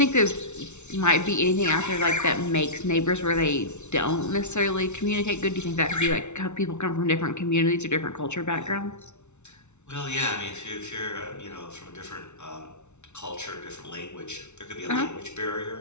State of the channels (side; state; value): right; late; 0.82 ms